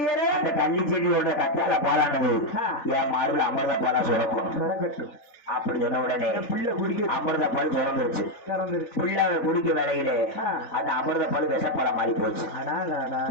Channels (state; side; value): late; right; 3.4 ms